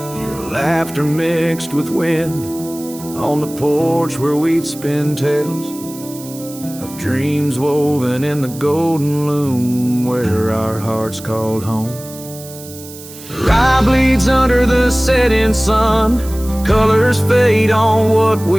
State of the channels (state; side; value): noise; right; hiss, 16 dB below the sound